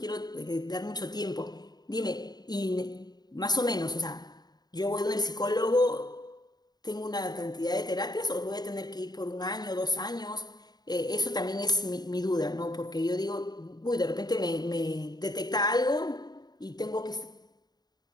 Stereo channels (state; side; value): late; right; 0.20 ms